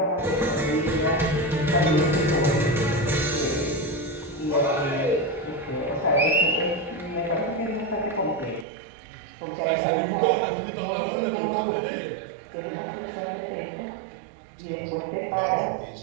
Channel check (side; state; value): left; drops out; at 8.7 s